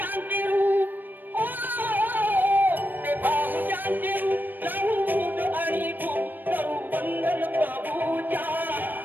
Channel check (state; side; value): late; left; 0.091 ms